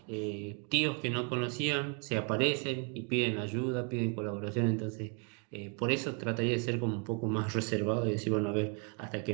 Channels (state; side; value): quieter; left; 36.5 dB